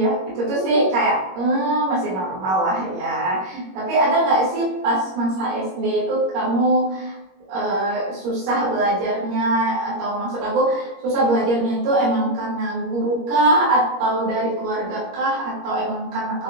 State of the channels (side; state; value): left; late; 21 ms